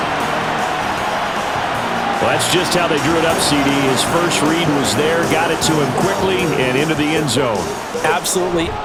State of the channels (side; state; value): both; identical; correlation 1.00